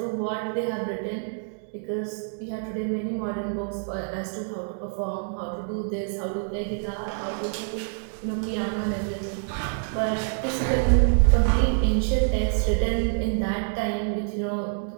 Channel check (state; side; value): silent; left; digital silence